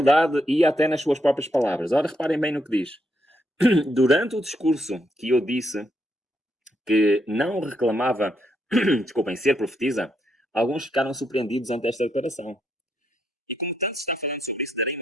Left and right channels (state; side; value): normal; both; correlation 0.78